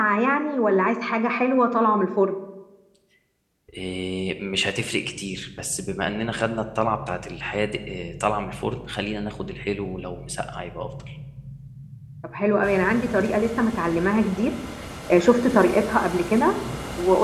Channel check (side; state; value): both; identical; correlation 1.00